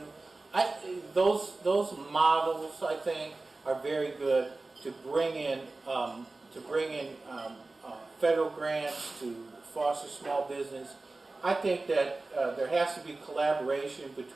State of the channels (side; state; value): left; quieter; 3.3 dB